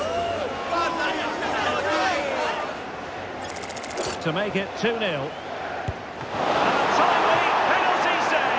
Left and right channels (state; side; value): identical; both; correlation 1.00